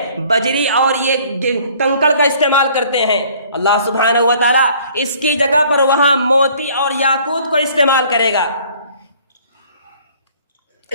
بجری اور یہ کنکڑ کا استعمال کرتے ہیں، اللہ سبحانہ و تعالی اس کی جگہ پر وہاں موتی اور یاقوت کو استعمال کرے گا۔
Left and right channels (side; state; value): both; inverted; correlation -0.55